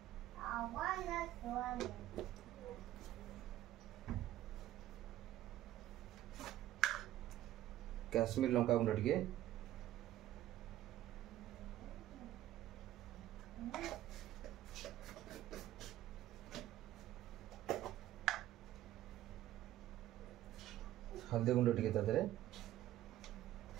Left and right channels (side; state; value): left; quieter; 13.8 dB